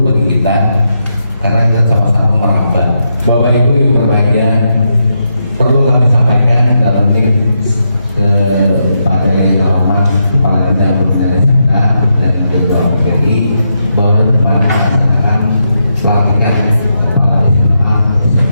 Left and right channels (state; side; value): inverted; both; correlation -0.83